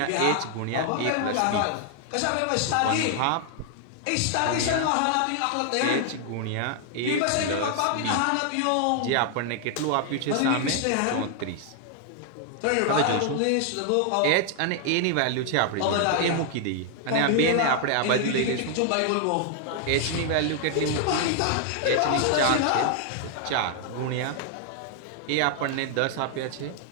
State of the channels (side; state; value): both; different; correlation 0.00